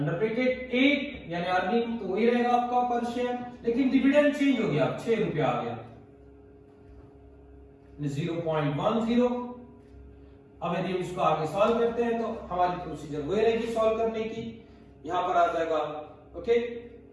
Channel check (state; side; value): identical; both; correlation 1.00